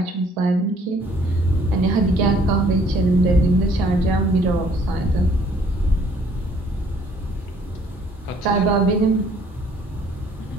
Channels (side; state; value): both; normal; correlation 0.60